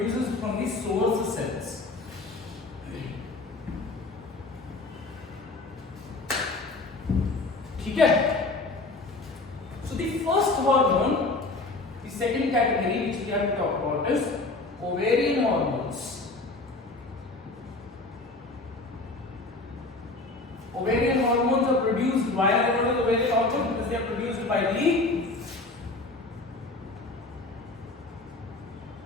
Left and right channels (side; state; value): right; quieter; 3.2 dB